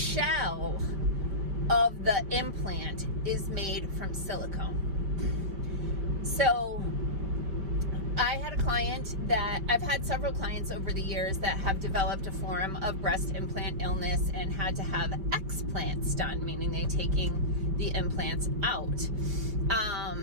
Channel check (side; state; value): left; late; 5.1 ms